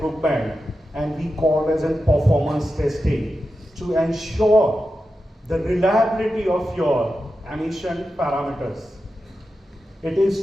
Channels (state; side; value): normal; both; correlation 0.91